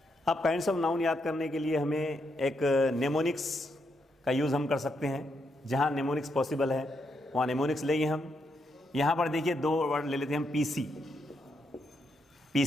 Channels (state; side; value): normal; both; correlation 0.80